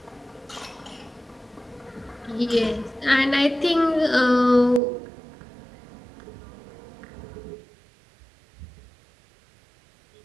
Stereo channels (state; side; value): drops out; left; at 4.8 s